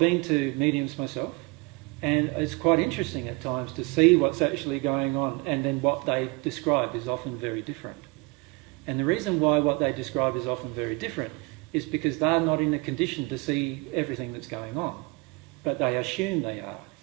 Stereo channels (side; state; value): left; quieter; 26.2 dB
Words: to mediums myself, and it's quite interesting at times to see what's actually going on, and then what they describe is often very different. And the reason why what they describe is often very different is because they're not in a condition to see everything that's going on, but they assume they are.